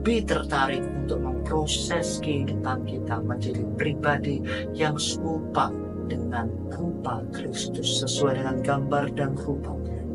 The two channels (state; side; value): identical; both; correlation 1.00